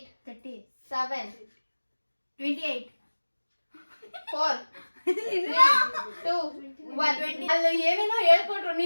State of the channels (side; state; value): both; inverted; correlation -1.00